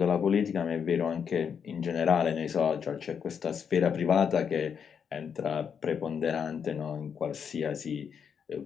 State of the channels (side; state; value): right; quieter; 7.2 dB